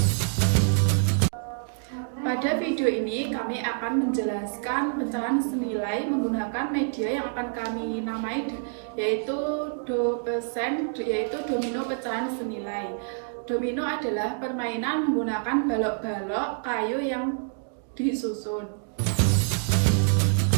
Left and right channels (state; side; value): silent; left; digital silence